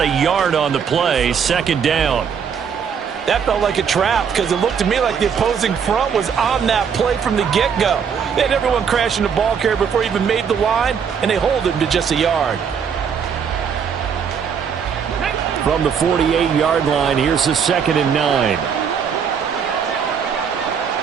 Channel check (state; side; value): quieter; left; 7.0 dB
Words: yard on the play. Second down. That felt like a trap because it looked to me like the opposing front was on that play from the get-go. They had everyone crashing the ball carrier before he even made the line, and they hold him to just a yard. From the 48-yard line, here's the second and 9.